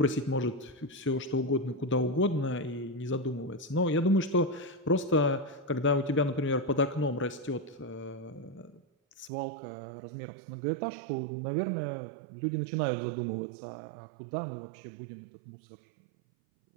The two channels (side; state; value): left; drops out; at 9.3 s